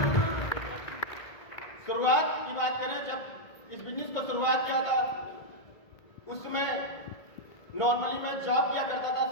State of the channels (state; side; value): late; right; 1.9 ms